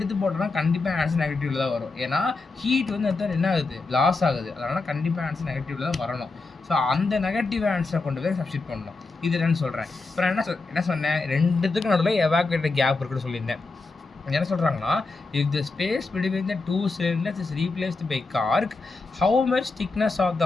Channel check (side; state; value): right; quieter; 3.7 dB